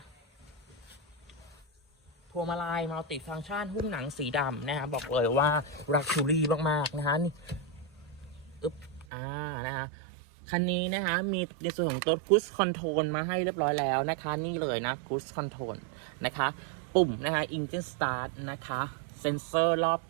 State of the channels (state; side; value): drops out; left; at 9.1 s